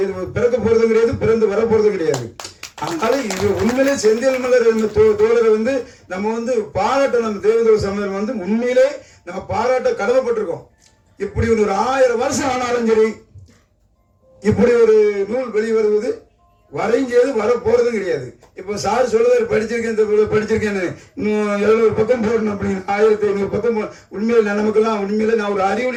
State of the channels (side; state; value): both; identical; correlation 1.00